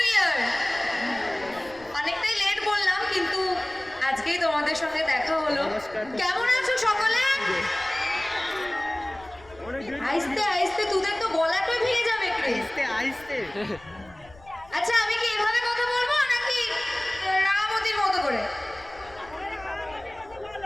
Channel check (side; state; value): left; noise; rumble, 24 dB below the sound